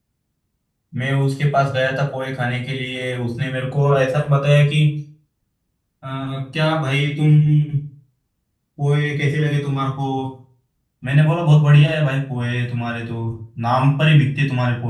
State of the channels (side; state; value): both; identical; correlation 1.00